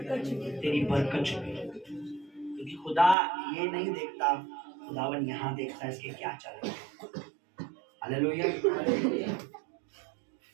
बरकत छुपी है। क्योंकि खुदा ये नहीं देखता, खुदावन यहाँ देखता है इसके क्या चल रहा है। हालेलुया।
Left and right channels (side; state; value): left; drops out; at 3.2 s